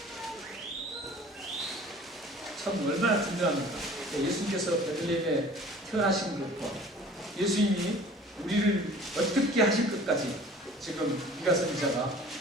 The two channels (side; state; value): both; normal; correlation 0.47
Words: 참 얼마나 분명합니까? 예수님께서 베들레헴에 태어나신 것과 예수님이 우리를 어떻게 하실 것까지 지금 미가 선지자가